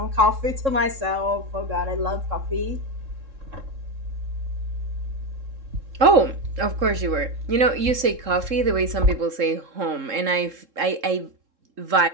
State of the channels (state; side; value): late; left; 3.7 ms